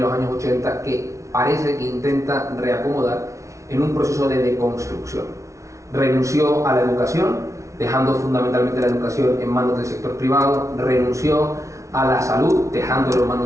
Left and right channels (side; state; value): left; late; 0.14 ms